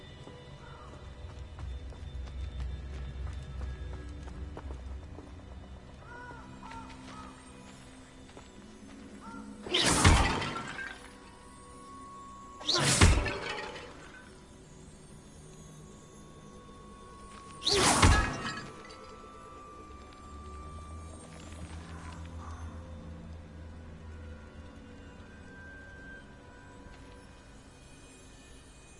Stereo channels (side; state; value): both; identical; correlation 1.00